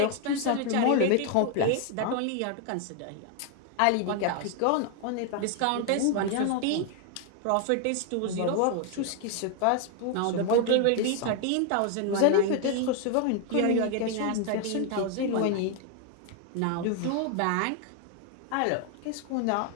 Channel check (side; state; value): both; different; correlation 0.00